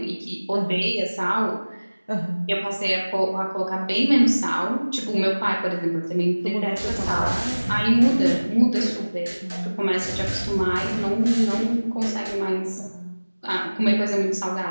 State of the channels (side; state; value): both; inverted; correlation -1.00